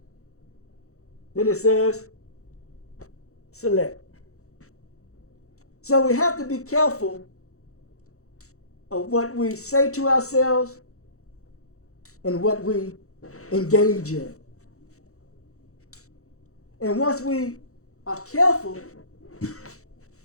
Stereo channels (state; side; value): late; right; 0.64 ms